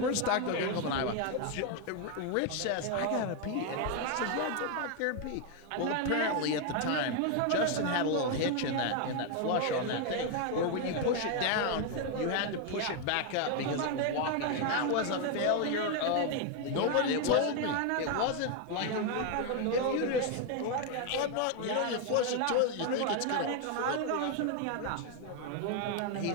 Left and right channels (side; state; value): both; different; correlation 0.01